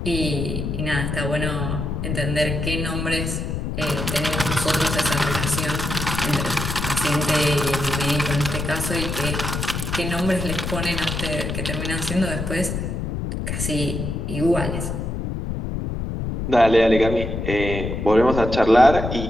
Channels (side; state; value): left; noise; rumble, 3 dB below the sound